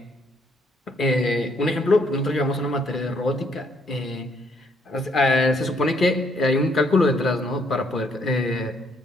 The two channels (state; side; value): normal; both; correlation 0.69